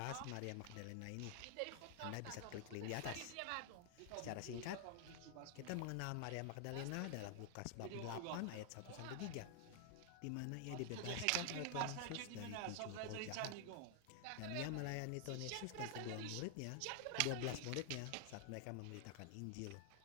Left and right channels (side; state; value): both; different; correlation 0.00